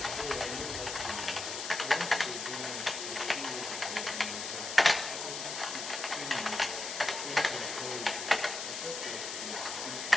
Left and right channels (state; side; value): noise; left; hiss, 5 dB below the sound